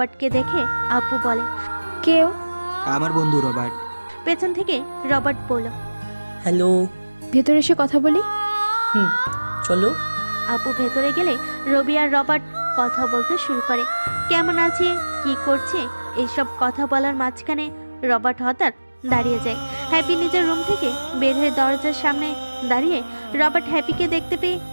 দেখে আপু বলে, কেউ? আমার বন্ধু রবার্ট। পেছন থেকে রবার্ট বলল, হ্যালো। ভেতরে এসে কথা বলি। চলো। আপু ভেতরে গেলে রবি আর রবার্ট কথা বলতে শুরু করে। কেমন আছে, কি করছে, এইসব কথা বলার মাঝখানে রবার্ট হঠাৎ দাঁড়িয়ে যায়। হ্যাপি নিজের রুম থেকে বের হয়ে দরজার সামনে দাঁড়িয়ে রবার্ট হ্যাপিকে দেখতে পেয়ে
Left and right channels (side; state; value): both; inverted; correlation -1.00